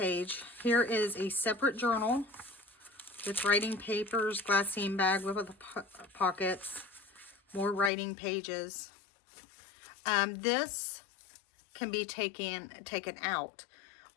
Here is a separate journal with writing papers, glassine bag with the pockets, more writing pages. This can be taken out.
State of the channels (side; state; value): right; drops out; at 7.9 s